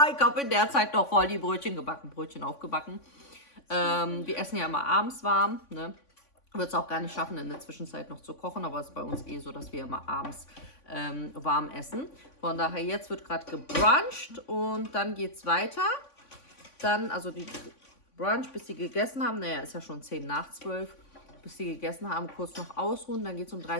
ich habe in der Zeit noch voll die Brötchen gebacken. Brötchen aufgebacken. Wir essen ja immer abends warm. Ne? Wird es auch gar nicht schaffen, in der Zwischenzeit noch zu kochen. Aber es ist bei uns eh so, dass wir immer abends warm essen. Von daher, jetzt wird gerade gebruncht und dann geht es weiter. Dann, also die Brunch, bis sie gegessen haben. Naja, ist ja schon 10 nach 12. Bis sie gegessen haben, kurz noch ausruhen. Dann geht es um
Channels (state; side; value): late; right; 3.5 ms